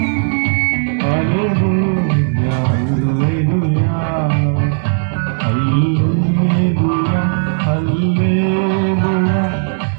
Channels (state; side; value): silent; left; digital silence